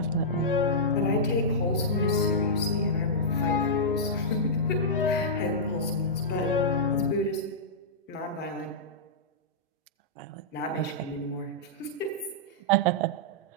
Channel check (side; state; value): both; normal; correlation -0.12